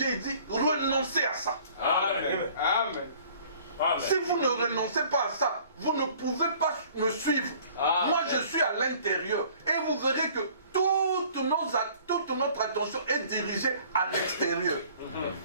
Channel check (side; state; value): both; inverted; correlation -0.53